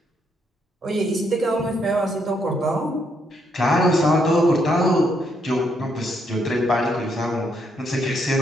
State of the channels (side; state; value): both; normal; correlation 0.75